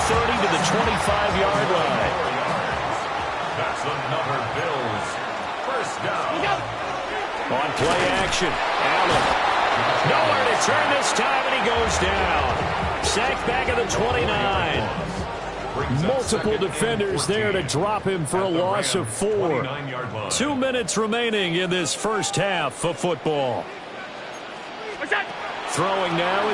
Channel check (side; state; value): both; identical; correlation 1.00